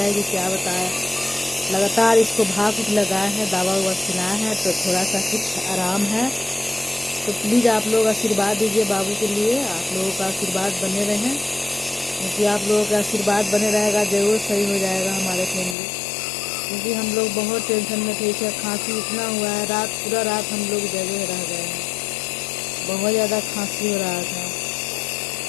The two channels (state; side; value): drops out; right; at 15.8 s